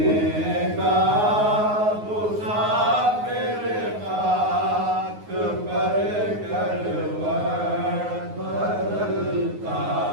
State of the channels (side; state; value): left; late; 9.5 ms